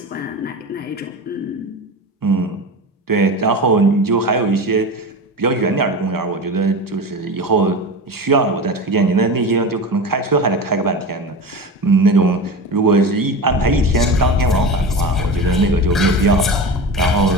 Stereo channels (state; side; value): normal; both; correlation 0.27